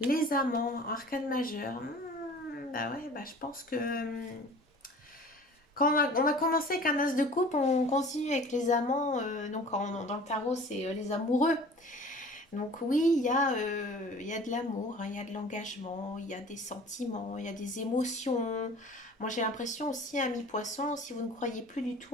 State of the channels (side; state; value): both; normal; correlation 0.45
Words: amants, arcane majeur, bah ouais, bah je pense que quand on a commencé avec un as de coupe, on continue avec les amants. Donc dans le tarot, c'est les amoureux. Donc oui, il y a de l'amour, hein, il y a de l'engagement, il y a des sentiments, il y a des émotions. Moi j'ai l'impression aussi, ami poisson, si vous ne croyez plus du tout